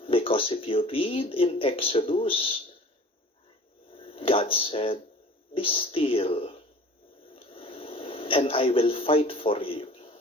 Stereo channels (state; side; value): normal; both; correlation 0.45